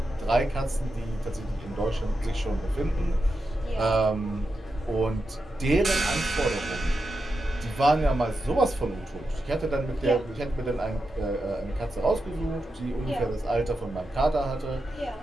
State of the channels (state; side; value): normal; both; correlation 0.88